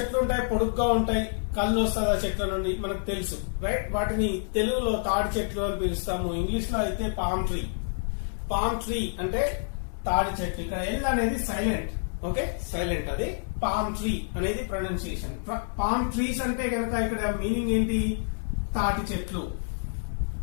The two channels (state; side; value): silent; right; digital silence